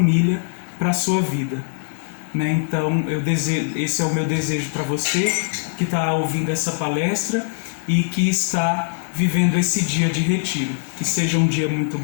para a sua vida, né? Então, esse é o meu desejo para você que está ouvindo essa palestra e que está vivendo esse dia de retiro. Que seja um dia muito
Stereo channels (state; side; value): silent; right; 62 dB below the other